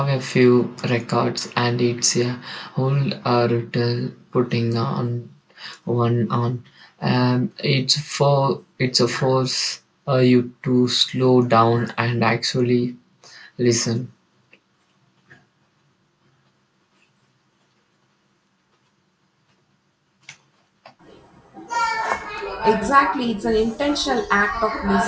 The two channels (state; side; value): identical; both; correlation 1.00